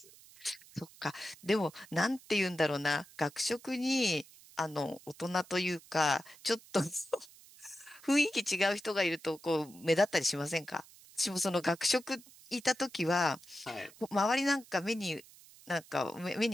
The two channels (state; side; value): noise; right; hiss, 22 dB below the sound